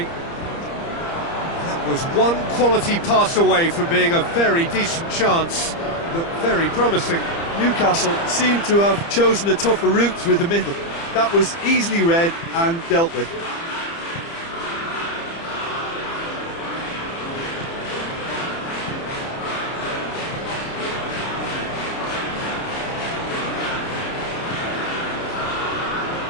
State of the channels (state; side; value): late; right; 30 ms